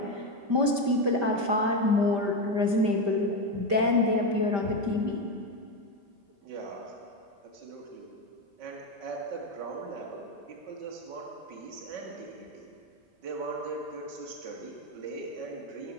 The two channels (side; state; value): left; late; 5.1 ms